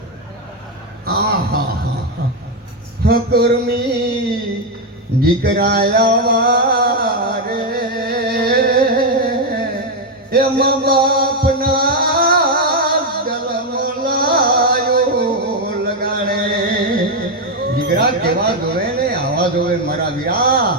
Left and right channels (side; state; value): both; normal; correlation 0.04